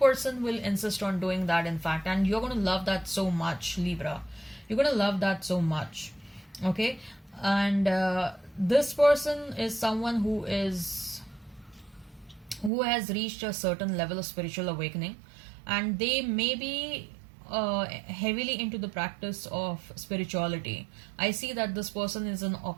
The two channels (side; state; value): left; drops out; at 12.7 s